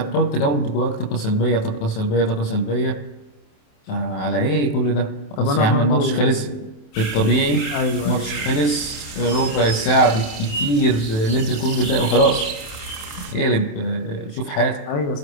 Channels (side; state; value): right; late; 27 ms